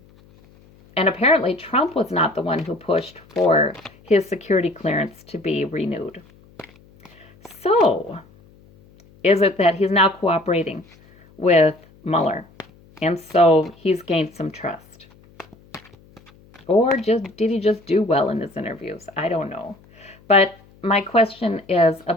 and apparently, Trump was not the one who pushed for his security clearance to be renewed. So, is it that he's now cooperating with Mueller? And so he's gained some trust. Or did he just do well in his interviews? I don't know. But my question is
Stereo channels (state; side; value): noise; left; hum, 27 dB below the sound